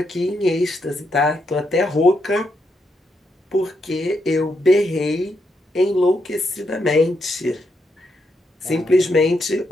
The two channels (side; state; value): both; normal; correlation 0.80